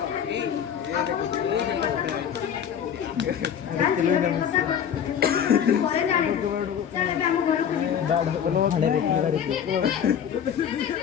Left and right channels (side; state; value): right; quieter; 8.5 dB